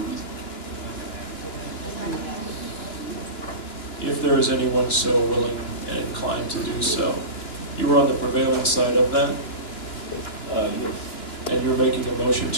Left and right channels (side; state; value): right; late; 2.9 ms